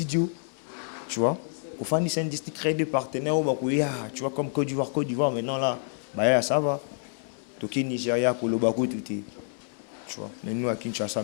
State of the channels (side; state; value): right; silent; digital silence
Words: tu vois. Pour faire des industries, créer des partenaires tu vois comme Côte d'Ivoire maintenant là, bah ça va. Toki Nigeria pour le Bakou tout est. Tu vois. Mais nous à Kinshasa